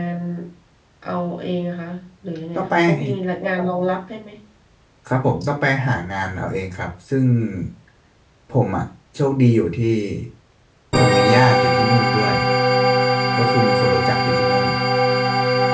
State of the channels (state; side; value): identical; both; correlation 1.00